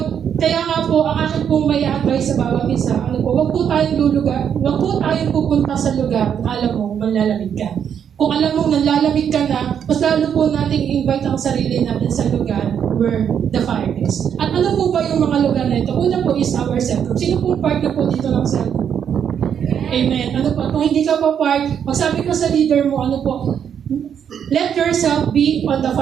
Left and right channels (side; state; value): left; quieter; 8.3 dB